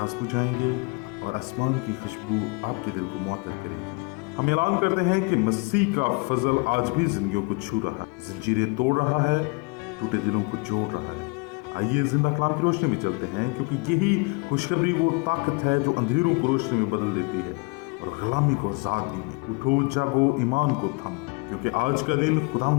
बुझाएंगे और आसमान की खुशबू आपके दिल को मुअत्तर करेगी। हम ऐलान करते हैं कि मसीह का फजल आज भी जिंदगियों को छू रहा है, जंजीरें तोड़ रहा है, टूटे दिलों को जोड़ रहा है। आइए जिंदा कलाम की रोशनी में चलते हैं, क्योंकि यही खुशखबरी वो ताकत है जो अंधेरों को रोशनी में बदल देती है और गुलामी को आजादी में। उठो जागो, ईमान को थामो, क्योंकि आज का दिन खुदा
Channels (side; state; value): right; quieter; 30.6 dB